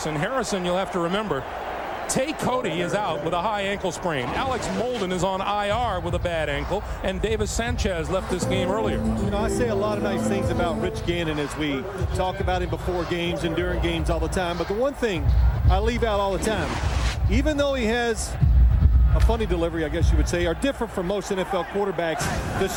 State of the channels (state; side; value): identical; both; correlation 1.00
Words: Harrison, you'll have to remember, Tay Cody is out with a high ankle sprain. Alex Molden is on IR with a bad ankle, and Davis Sanchez left this game earlier. You know, I say a lot of nice things about Rich Gannon as we talk about him before games and during games all the time, but the one thing I leave out all the time, even though he has a funny delivery, I guess you would say, are different from most NFL quarterbacks, the